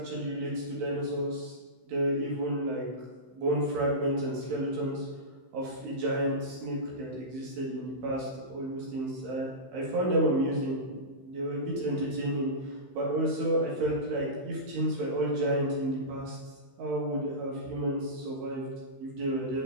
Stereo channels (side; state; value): left; late; 16 ms